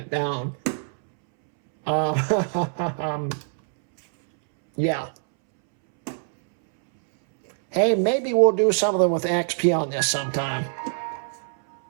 down. Yeah. Hey, maybe we'll do something with XP on this sometime.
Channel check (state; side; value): silent; left; 63 dB below the other